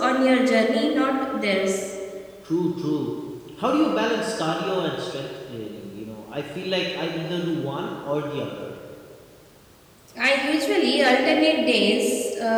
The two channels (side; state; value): both; identical; correlation 1.00